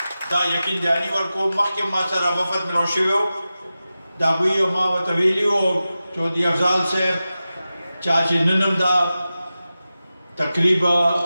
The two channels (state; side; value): inverted; both; correlation -0.94